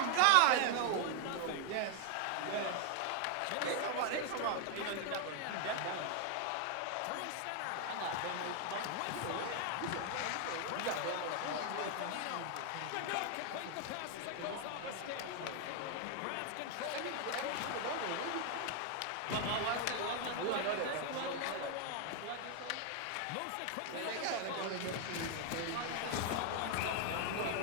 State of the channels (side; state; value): both; different; correlation 0.00